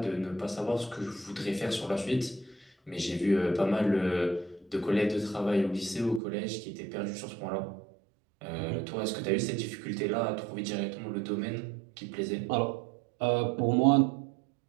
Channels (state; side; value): drops out; left; at 6.2 s